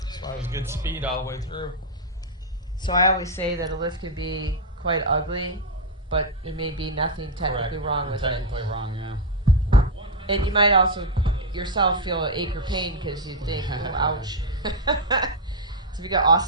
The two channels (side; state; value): both; normal; correlation -0.01